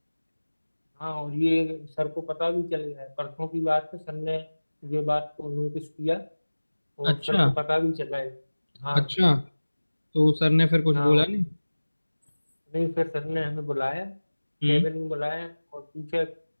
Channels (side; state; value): both; inverted; correlation -1.00